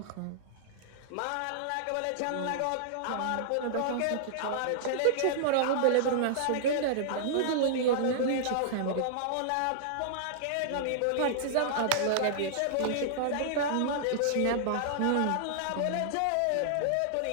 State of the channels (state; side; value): different; both; correlation -0.01